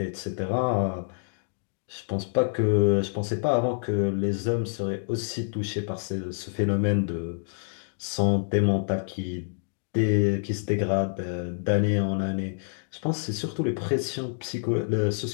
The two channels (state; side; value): silent; right; digital silence